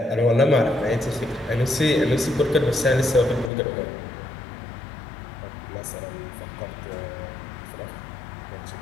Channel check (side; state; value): right; drops out; at 3.5 s